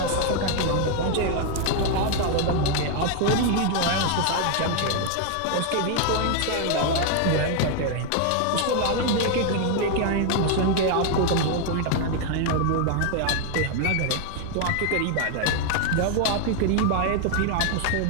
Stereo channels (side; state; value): both; different; correlation 0.00